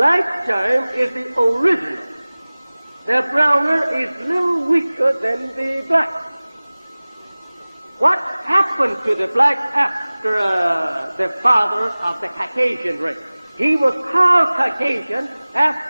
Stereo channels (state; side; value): inverted; both; correlation -0.99